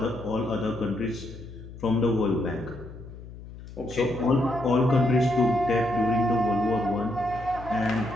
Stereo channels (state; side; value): noise; left; hum, 15 dB below the sound